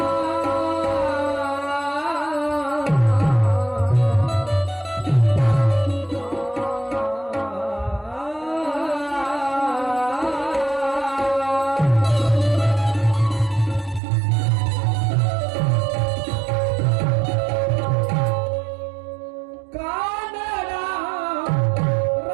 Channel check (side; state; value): left; drops out; at 14.0 s